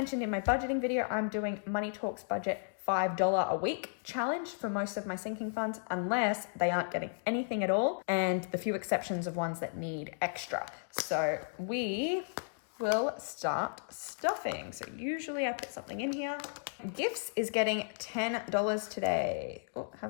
in my budgeting video, I'm doing Money Talks Budget $5 a week challenge for most of my sinking funds, unless they aren't getting anything at all, and the few exceptions of ones that need extra. So we will start stuffing. So usually I put something in here. Gifts is getting $10 today. Oh,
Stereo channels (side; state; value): right; silent; digital silence